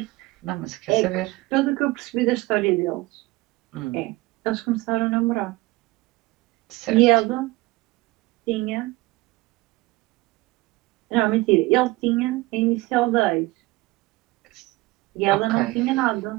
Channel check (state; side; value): quieter; left; 21.1 dB